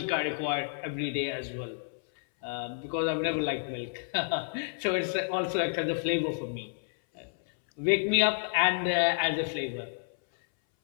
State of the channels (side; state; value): right; silent; 58 dB below the other